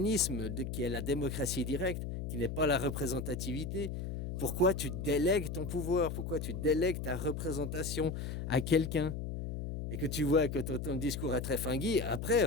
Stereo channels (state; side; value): noise; left; hum, 5 dB below the sound